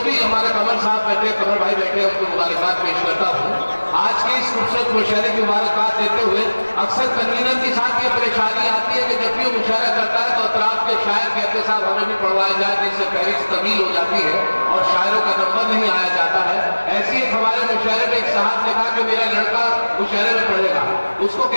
भी हमारे कमल साहब बैठे, कमल भाई बैठे, उनको मुबारकबाद पेश करता हूँ। आज की इस खूबसूरत मुशायरे की मुबारकबाद देते हुए अक्सर कन्वीनर के साथ ये परेशानी आती है कि जब भी वो मुशायरा करता है तो अतराफ के शायर कहते साहब हमें भी पढ़वाया जाए, जिससे फहरिस्त तवील हो जाती है और शायरों का नंबर नहीं आया जाता है। ऐसी एक हमारे मुशायरे में एक साहब ने कहा कि मेरा लड़का मुशायरे में पढ़ेगा, उसको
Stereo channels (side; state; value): both; inverted; correlation -1.00